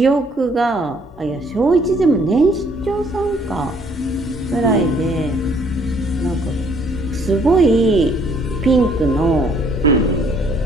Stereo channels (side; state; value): both; normal; correlation 0.63